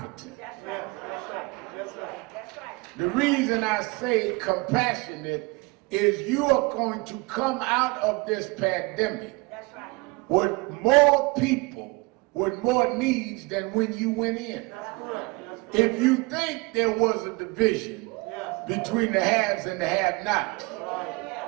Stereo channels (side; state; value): left; quieter; 25.9 dB